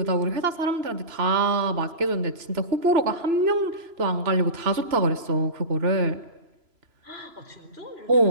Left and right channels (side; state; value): left; late; 3.0 ms